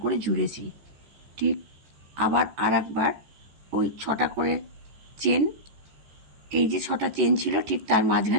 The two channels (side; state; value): left; late; 14 ms